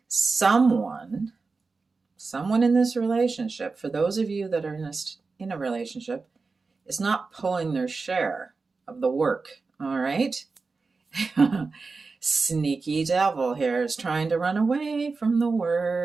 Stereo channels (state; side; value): quieter; left; 4.2 dB